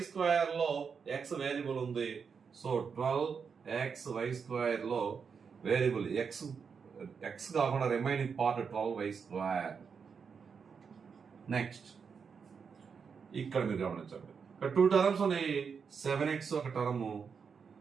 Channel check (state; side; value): quieter; left; 6.1 dB